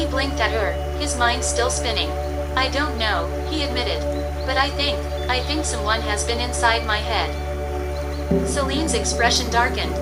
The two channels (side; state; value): both; identical; correlation 1.00